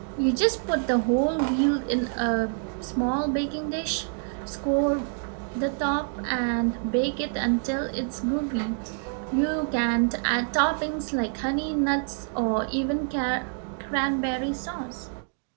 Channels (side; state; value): left; silent; 60 dB below the other